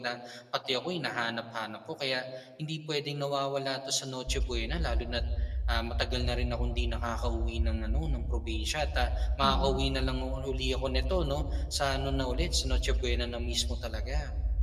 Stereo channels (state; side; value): identical; both; correlation 1.00